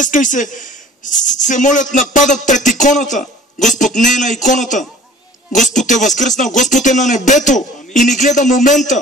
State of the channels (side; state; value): both; normal; correlation 0.47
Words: и се молят, нападат пред иконата. Господ не е на иконата. Господ е възкръснал. Господ е на небето и ни гледа